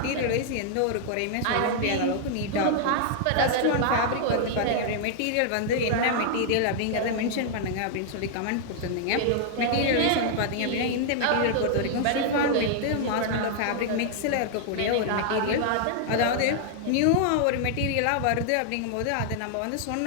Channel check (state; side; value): different; both; correlation -0.01